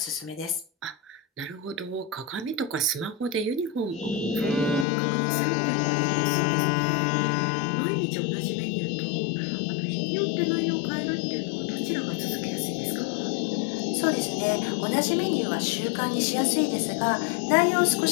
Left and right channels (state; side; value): drops out; right; at 4.9 s